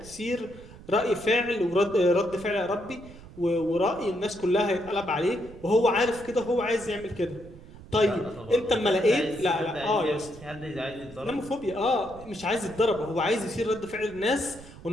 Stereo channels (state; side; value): noise; right; rumble, 18 dB below the sound